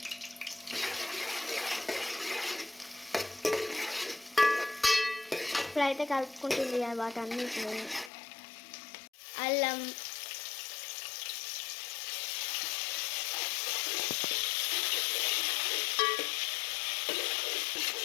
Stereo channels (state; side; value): drops out; right; at 8.1 s